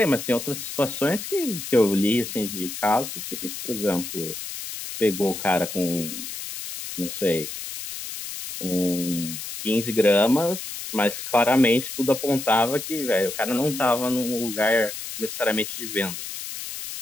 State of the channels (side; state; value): left; noise; hiss, 8 dB below the sound